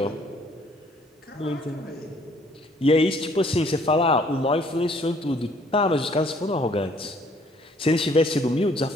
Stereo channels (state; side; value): normal; both; correlation 0.61